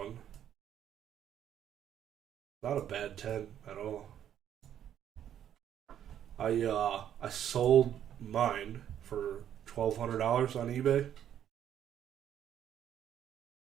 Not a bad 10 at all. I sold mine for $1,200 on eBay.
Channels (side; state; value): left; quieter; 10.1 dB